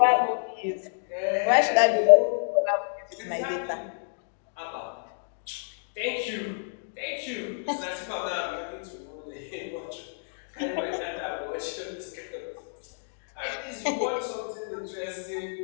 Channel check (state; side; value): silent; right; digital silence